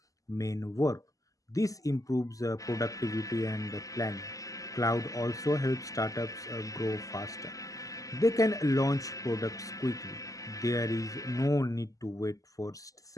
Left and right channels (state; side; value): late; right; 0.17 ms